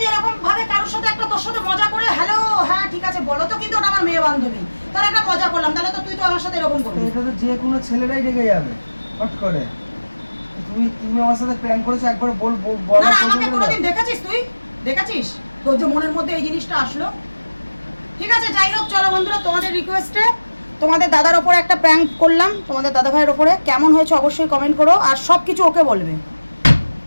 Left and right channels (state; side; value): inverted; both; correlation -1.00